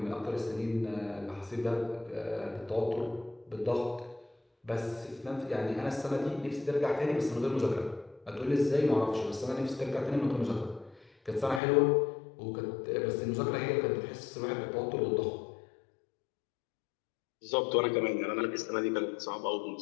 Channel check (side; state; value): right; drops out; at 11.6 s